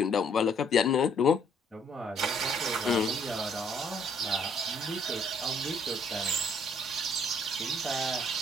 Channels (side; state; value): both; normal; correlation 0.64